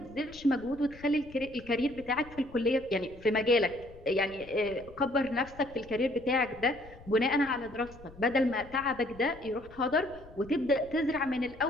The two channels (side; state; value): left; noise; rumble, 20 dB below the sound